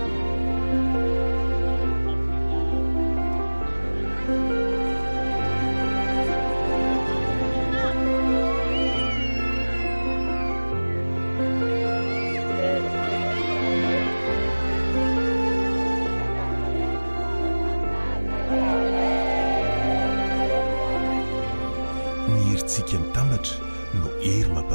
Tsika mitambatra no hery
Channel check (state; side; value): inverted; both; correlation -1.00